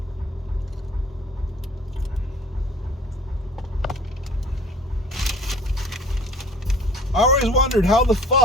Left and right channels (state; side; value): normal; both; correlation 0.51